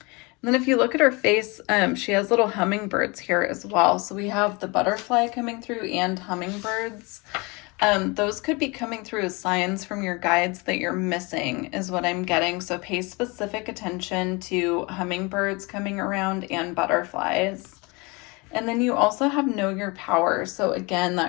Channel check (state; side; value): quieter; right; 27.2 dB